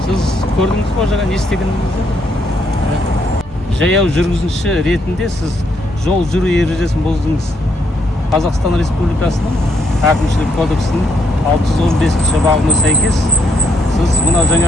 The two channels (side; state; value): both; normal; correlation 0.74